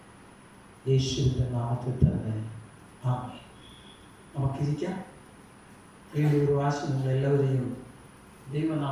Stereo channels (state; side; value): identical; both; correlation 1.00